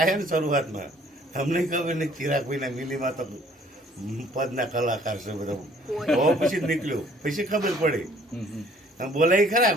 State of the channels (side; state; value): both; normal; correlation 0.58